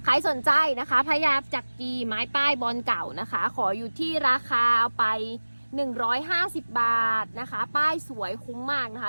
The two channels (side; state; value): both; inverted; correlation -1.00